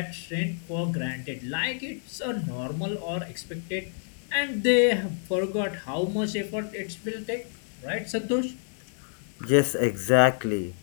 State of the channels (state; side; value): silent; right; digital silence